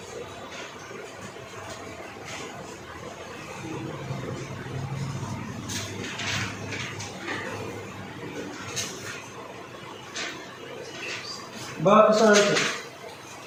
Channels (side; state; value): both; identical; correlation 1.00